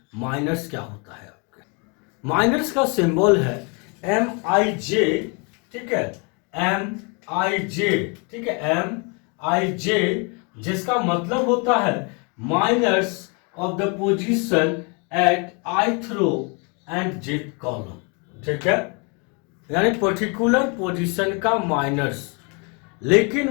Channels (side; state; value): right; quieter; 33.6 dB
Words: माइनर्स क्या होता है। आपके माइनर्स का सिंबल है MIJ, ठीक है, MIJ, ठीक है, MIJ, जिसका मतलब होता है minors of the position at ith row and jth column, ठीक है, यानी पर्टिकुलर पोजीशन का माइनर्स। लेकिन